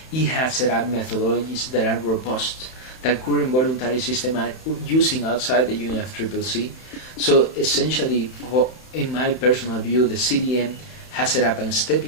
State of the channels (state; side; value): late; right; 31 ms